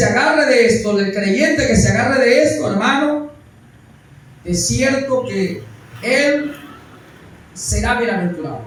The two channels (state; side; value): identical; both; correlation 1.00